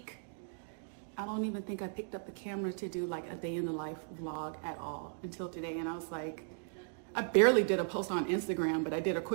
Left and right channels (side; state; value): left; silent; digital silence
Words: I don't even think I picked up the camera to do like a day in the life vlog at all until today. And I was like, I barely did a post on Instagram, but I did a